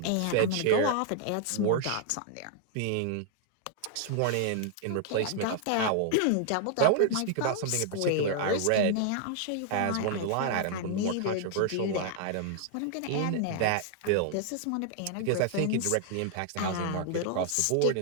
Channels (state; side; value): different; both; correlation 0.00